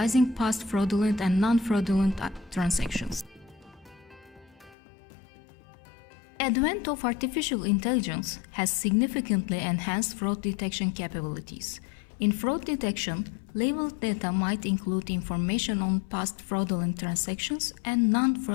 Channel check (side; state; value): right; drops out; at 4.8 s